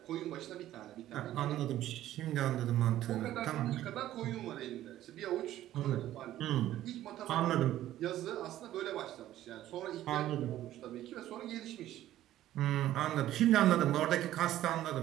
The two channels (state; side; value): quieter; left; 13.4 dB